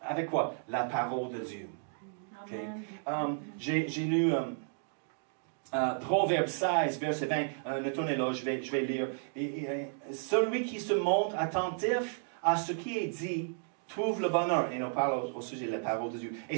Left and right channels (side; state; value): left; silent; digital silence